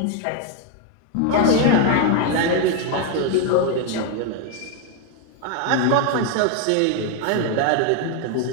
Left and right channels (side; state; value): both; different; correlation 0.01